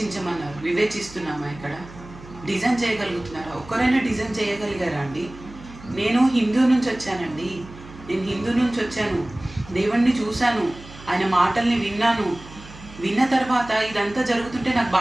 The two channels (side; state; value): right; noise; hum, 18 dB below the sound